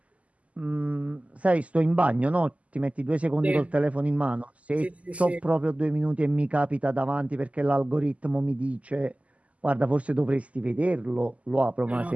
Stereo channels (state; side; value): late; left; 0.069 ms